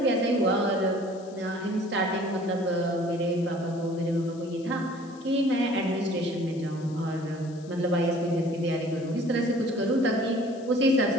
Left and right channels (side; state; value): left; noise; hiss, 25 dB below the sound